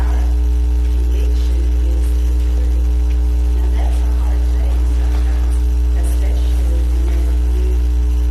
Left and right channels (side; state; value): both; identical; correlation 1.00